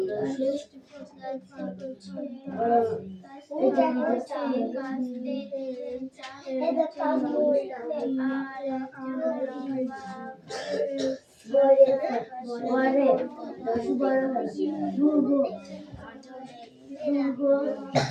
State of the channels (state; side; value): identical; both; correlation 1.00